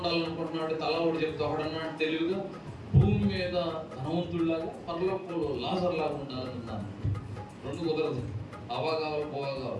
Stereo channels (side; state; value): both; identical; correlation 1.00